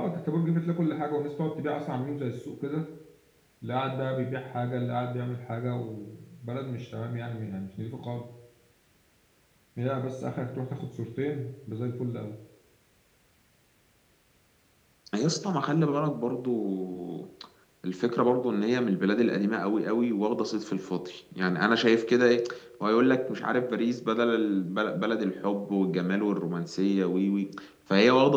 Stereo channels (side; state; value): both; identical; correlation 1.00